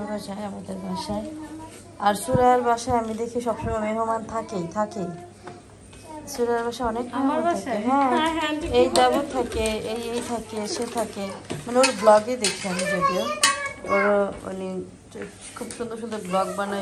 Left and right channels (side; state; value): both; identical; correlation 1.00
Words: যায় আমাদের বাসায়। আর সুরাইয়ার বাসায় আমি দেখি সবসময় মেহমান থাকেই। সুরাইয়ার বাসায় অনেক মেহমান থাকে। হ্যাঁ, এই দেব থাকে, এই থাকে, সে থাকে, মানে ওর ব্লগে দেখি আমি। যদিও ওর মানে খুব সুন্দর সুন্দর ব্লগ